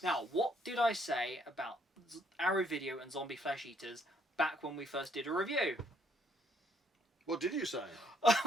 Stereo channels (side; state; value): both; normal; correlation 0.68